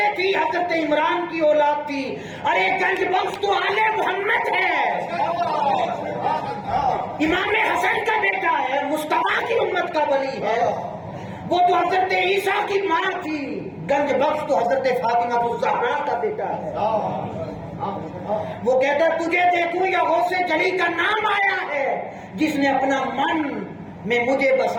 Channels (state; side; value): identical; both; correlation 1.00